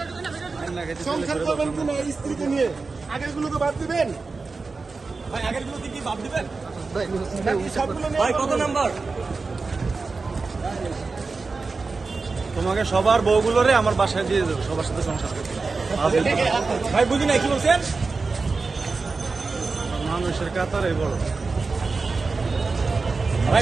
সংসার করবেন কিনা এই স্ত্রীকে নিয়ে? আগের গুলোকে বাদ দিবেন। ভাই আগের গুলো কি বাদ দিবেন? নাকি সবগুলো নিয়ে ভাই কত নাম্বার? তোমাকে সবার বউগুলোরে আমার বাসায় দিয়ে দেবো, সবার সাথে সংসার করতে। ভাই বুঝি নাই কি বলছেন? মানুষের কাতারে বড়। ভাই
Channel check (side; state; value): left; quieter; 4.2 dB